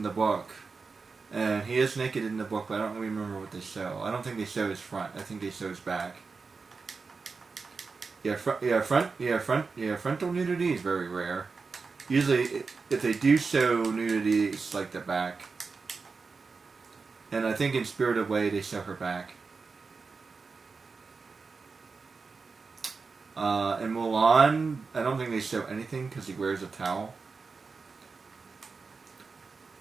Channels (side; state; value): left; quieter; 4.6 dB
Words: the book. And he is naked in the book, but I don't remember what they show. I don't think they show his front. I think they show his back. Frontal nudity is very rare. Usually, if they do show nudity, it's like the back. And I think in Spirited Away, they show her back. In Mulan, I don't think they show anything because he wears a towel.